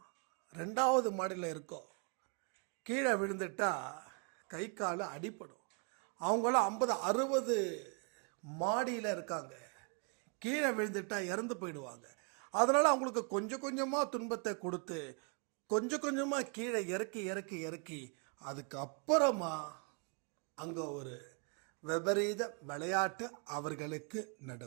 2வது மாடியில் இருக்கோம். கீழே விழுந்துட்டா கை கால அடிப்படும். அவங்களாம் 50-60 மாடியில் இருக்காங்க. கீழே விழுந்துட்டா இறந்து போயிடுவாங்க. அதனால் அவங்களுக்கு கொஞ்சம் கொஞ்சமாக துன்பத்தை கொடுத்து கொஞ்சம் கொஞ்சமாக கீழே இறக்கி இறக்கி இறக்கி அதுக்கப்புறமா அங்கே ஒரு விபரீத விளையாட்டு அவர்களுக்கு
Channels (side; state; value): left; quieter; 37.0 dB